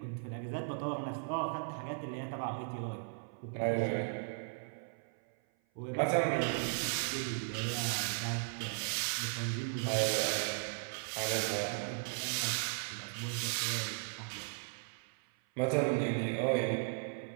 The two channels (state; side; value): silent; left; 53 dB below the other